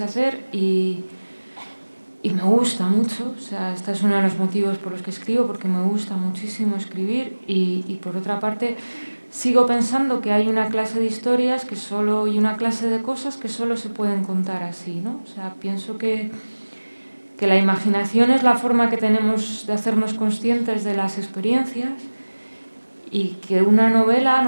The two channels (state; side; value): inverted; both; correlation -1.00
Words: hacer y me gusta mucho. O sea, este es uno de los motivos por los que escribo, porque me gusta muchísimo escribir y por otra parte sigo pensando que hay una clase de historias y una clase de cosas que solo se pueden contar así, ¿no? O sea, pienso que la imaginación es la forma que tenemos de hacernos conscientes de las experiencias y que una novela